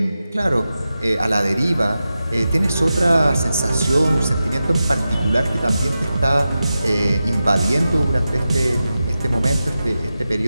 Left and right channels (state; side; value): inverted; both; correlation -0.92